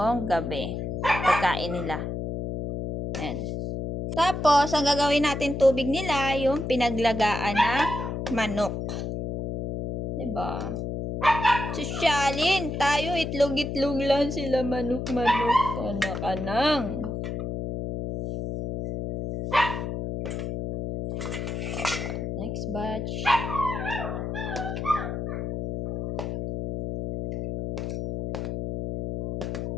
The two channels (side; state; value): left; noise; hum, 4 dB below the sound